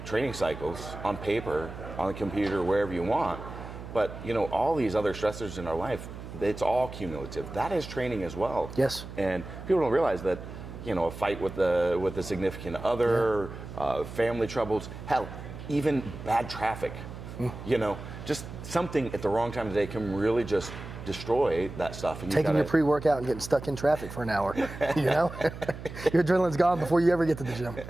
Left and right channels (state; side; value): noise; right; hum, 11 dB below the sound